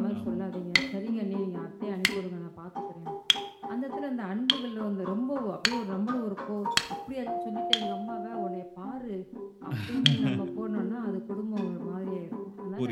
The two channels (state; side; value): identical; both; correlation 1.00